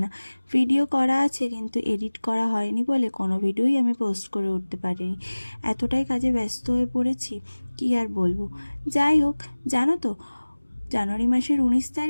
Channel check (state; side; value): inverted; both; correlation -1.00